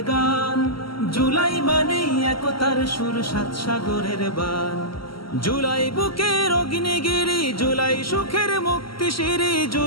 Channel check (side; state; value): right; late; 0.74 ms